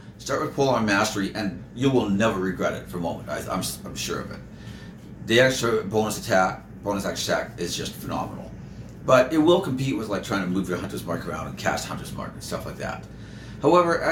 start with polearm mastery, and you will never regret it for a moment. I'm sure of it. The extra bonus action attack is just phenomenal. But it will compete with like trying to move your Hunter's Mark around and cast Hunter's Mark and stuff like that. However,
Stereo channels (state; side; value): identical; both; correlation 1.00